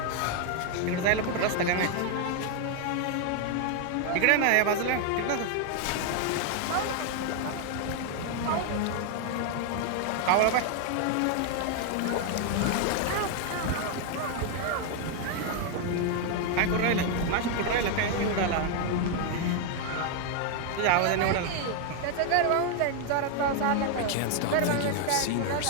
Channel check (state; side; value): different; both; correlation 0.00